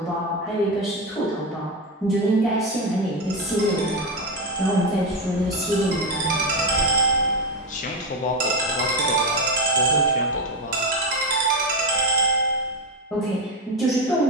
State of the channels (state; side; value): normal; both; correlation 0.12